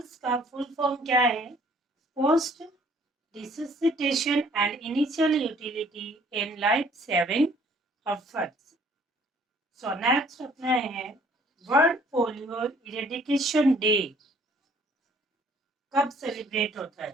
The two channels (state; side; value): normal; both; correlation 0.58